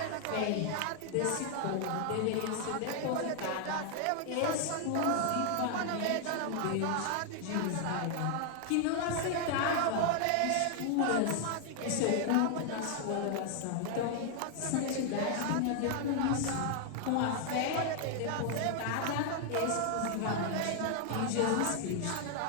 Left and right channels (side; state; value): both; different; correlation 0.00